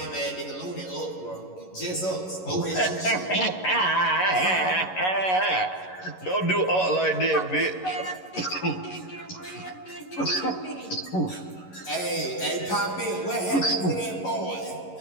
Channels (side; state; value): right; late; 11 ms